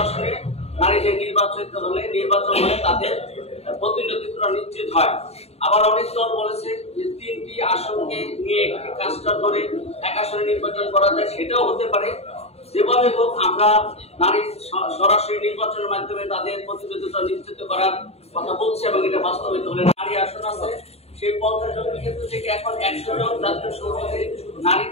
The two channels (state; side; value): late; right; 0.30 ms